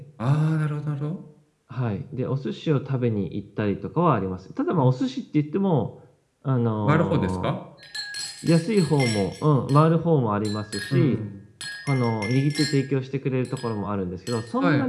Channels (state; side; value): identical; both; correlation 1.00